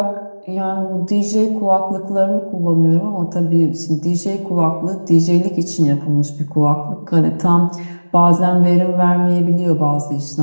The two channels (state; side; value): inverted; both; correlation -1.00